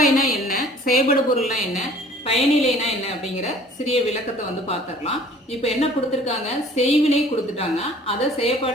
என்ன, செயல்படு பொருள்னா என்ன, பயனிலைனா என்ன அப்படிங்கிற சிறிய விளக்கத்தை வந்து பார்த்துடலாம். இப்போ என்ன கொடுத்துருக்காங்க, செய்வினை கொடுத்துட்டாங்க, அதை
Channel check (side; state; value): both; normal; correlation 0.50